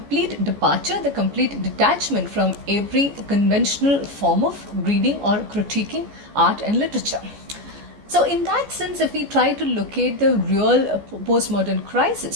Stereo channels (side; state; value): left; late; 14 ms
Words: departure, the complete detachment from every conventional form of reading or critiquing art and literature. So in that sense, if we try to locate the real postmodern